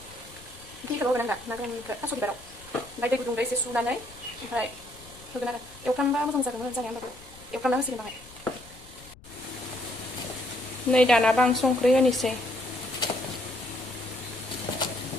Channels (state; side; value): noise; left; rumble, 22 dB below the sound